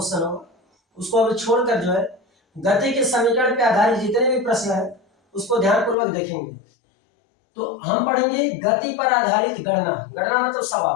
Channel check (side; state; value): right; drops out; at 6.0 s